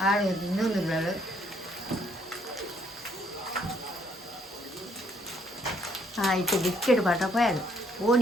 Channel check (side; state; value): both; normal; correlation 0.67